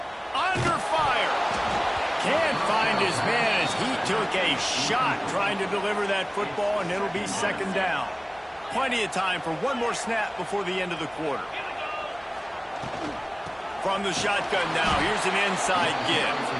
Under fire. Can't find his man as he took a shot trying to deliver that football, and it'll be 2nd down. Plenty of time for one more snap before the end of the quarter. From the shotgun now, here's an inside give.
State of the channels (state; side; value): identical; both; correlation 1.00